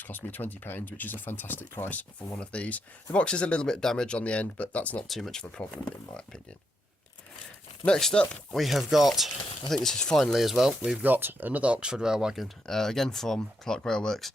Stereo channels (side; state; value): both; normal; correlation 0.80